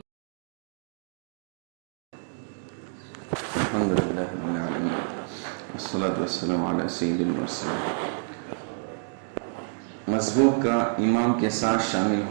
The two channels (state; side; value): silent; left; digital silence